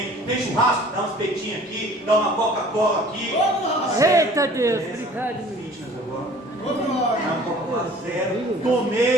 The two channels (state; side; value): normal; both; correlation 0.49